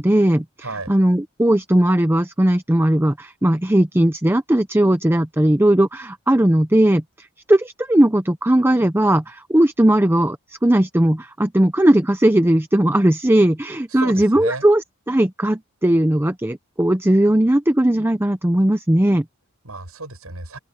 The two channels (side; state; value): both; normal; correlation 0.94